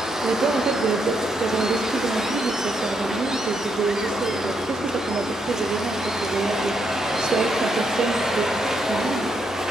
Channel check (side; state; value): both; normal; correlation 0.78